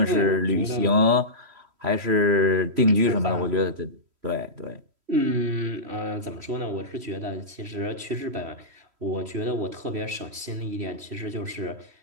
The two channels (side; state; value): left; late; 3.1 ms